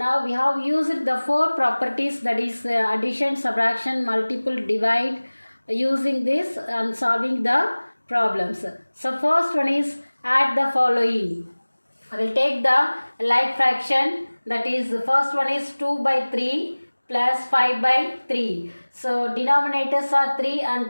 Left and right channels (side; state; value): both; inverted; correlation -1.00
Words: we have used the four properties, that is addition, subtraction, multiple, divide, using this and solving the problems. So first one is add the following. I will take the like fraction, that is the first one is 2 by 3 plus 5 by 3. So denominators are 3 and